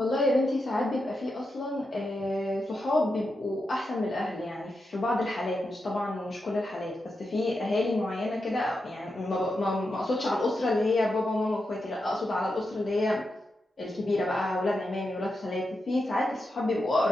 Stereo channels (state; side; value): normal; both; correlation 0.87